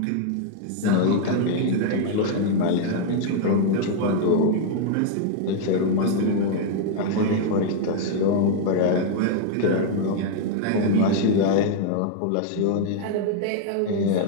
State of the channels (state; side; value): different; both; correlation 0.00